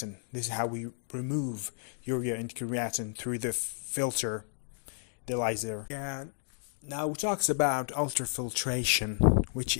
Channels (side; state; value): right; silent; digital silence